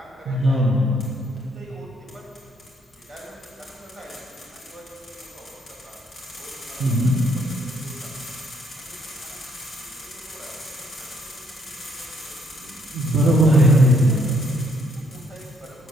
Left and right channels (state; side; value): normal; both; correlation 0.69